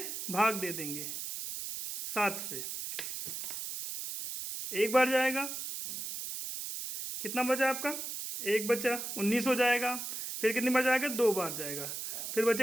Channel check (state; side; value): noise; right; hiss, 6 dB below the sound